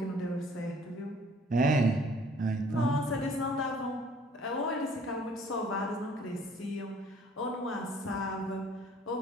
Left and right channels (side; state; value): both; normal; correlation 0.57